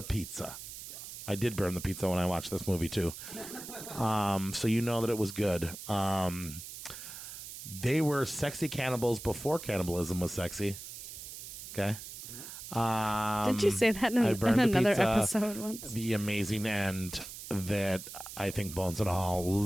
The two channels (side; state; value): right; noise; hiss, 11 dB below the sound